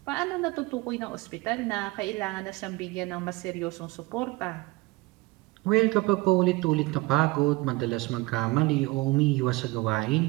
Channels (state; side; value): quieter; left; 22.2 dB